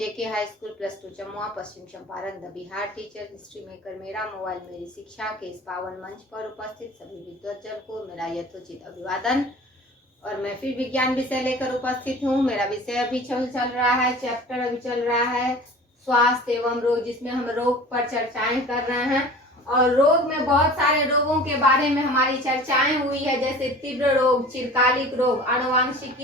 high school +2 Jamua Paschim Champaran the Bihar teacher history maker मेरा mobile मेरी शिक्षा के इस पावन मंच पर उपस्थित सभी विद्वतजन को मेरा यथोचित अभिवादन। और मैं फिर विज्ञान विषय लेकर उपस्थित हूँ। मेरा विषय अभी चल रहा है, चैप्टर अभी चल रहा है स्वास्थ्य एवं रोग, जिसमें हम रोग पर चर्चाएं कर रहे हैं। और रोग में बहुत सारे रोगों के बारे में हमारी चर्चाएं हुई है, जैसे तीव्र रोग, चिरकालिक रोग,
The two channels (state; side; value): normal; both; correlation 0.41